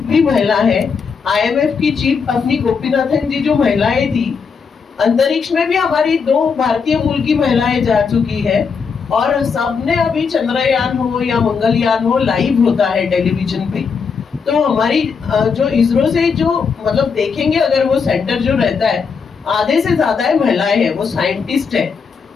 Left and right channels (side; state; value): right; quieter; 5.7 dB